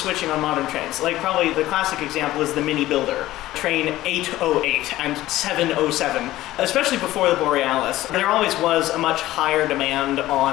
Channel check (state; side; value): quieter; right; 15.7 dB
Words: on modern trains. Probably the classic example is the Mini Builder, train 808 and 707, especially before the Borealis. There always was a much higher demand